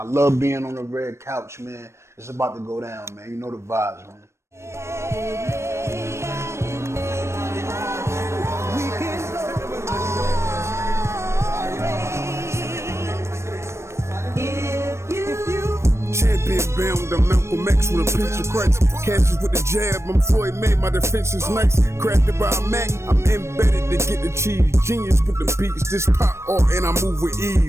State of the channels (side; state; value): left; late; 0.13 ms